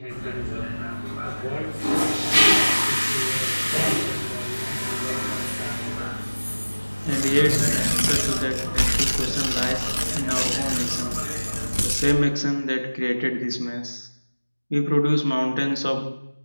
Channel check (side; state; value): both; inverted; correlation -1.00